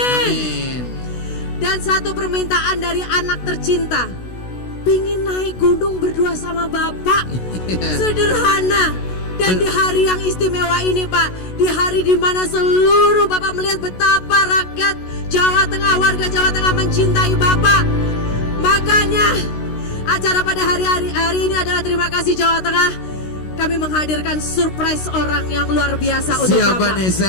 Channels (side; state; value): right; late; 16 ms